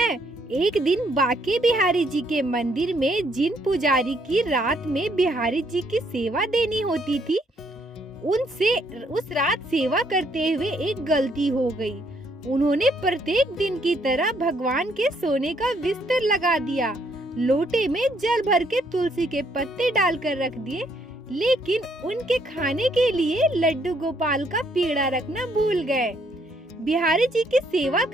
एक दिन बांके बिहारी जी के मंदिर में जिन पुजारी की रात में बिहारी जी की सेवा देनी होती थी, उनसे उस रात सेवा करते हुए एक गलती हो गई। उन्होंने प्रत्येक दिन की तरह भगवान के सोने का बिस्तर लगा दिया, लोटे में जल भर के तुलसी के पत्ते डालकर रख दिए, लेकिन उनके खाने के लिए लड्डू गोपाल का पेड़ा रखना भूल गए। बिहारी जी की सेवा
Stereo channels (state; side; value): normal; both; correlation 0.70